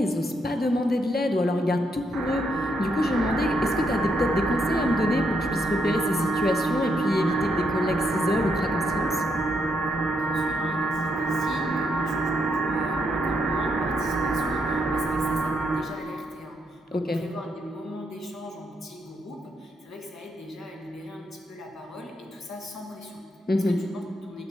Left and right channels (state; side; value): normal; both; correlation 0.77